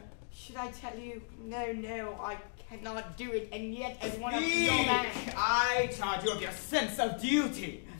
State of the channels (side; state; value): right; silent; digital silence